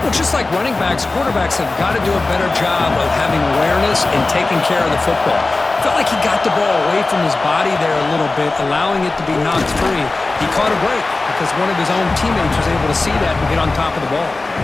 Well, just like running backs, quarterbacks have got to do a better job of having awareness and taking care of the football. Felt like he got the ball away from his body there a little bit, allowing it to be knocked free. He caught a break because one of his own teammates was able to see that and get on top of the ball.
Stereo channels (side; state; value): right; quieter; 3.3 dB